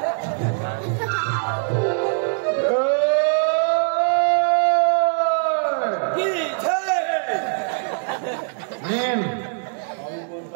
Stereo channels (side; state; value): left; silent; digital silence